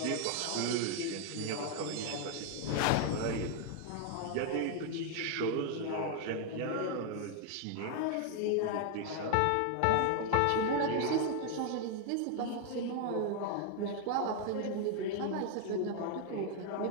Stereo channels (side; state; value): both; different; correlation 0.00